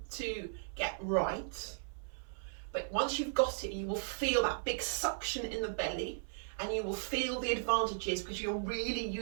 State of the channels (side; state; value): left; silent; 53 dB below the other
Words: to get right. But once you've got it, you will feel that big suction in the belly. And you will feel the advantages because you're really